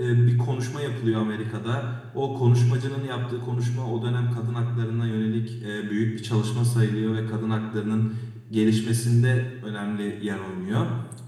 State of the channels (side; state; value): both; identical; correlation 1.00